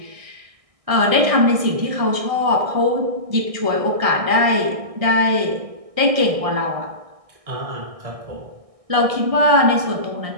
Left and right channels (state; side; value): late; left; 1.6 ms